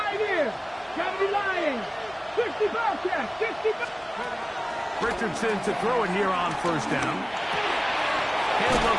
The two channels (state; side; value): identical; both; correlation 1.00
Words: years. Gotta be lying. 65 check, 65. Richardson to throw it here on first down. He'll